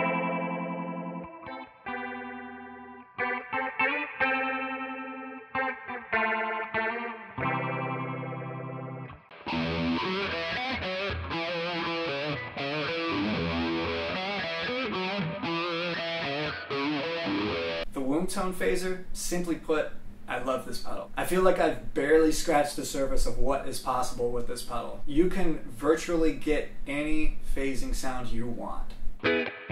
The Wombtone phaser, simply put, I love this pedal. I feel like I've barely scratched the surface of what is possible with this pedal. You can virtually get any phasing sound you want.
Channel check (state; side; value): identical; both; correlation 1.00